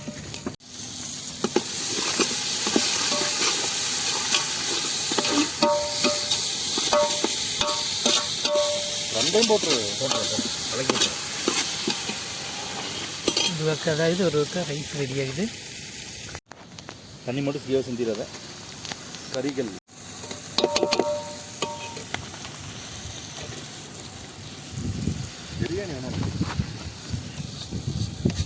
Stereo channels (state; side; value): identical; both; correlation 1.00